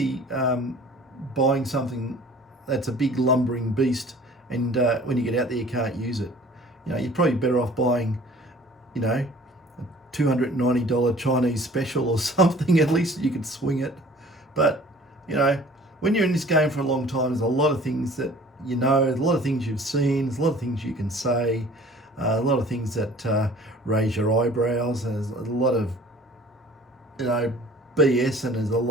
buying something that's a big lumbering beast, and when you get out there you can't use it. You're probably better off buying, a $290 Chinese special or something. At least you could swing it. But when you're in this game for a long time, there's a lot of things that there's a lot of things you've seen, there's a lot of things you can say, a lot of things that raise your eyebrows, and there's a lot of BS, and there's a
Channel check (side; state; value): both; normal; correlation 0.49